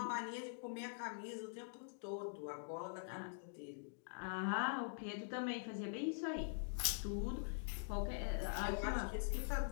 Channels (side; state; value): right; silent; digital silence